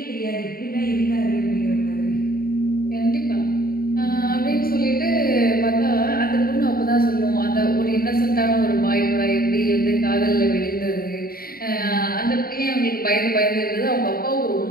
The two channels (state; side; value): late; right; 0.43 ms